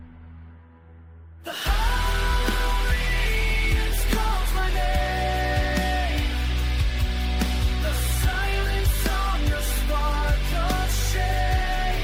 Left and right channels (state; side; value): identical; both; correlation 1.00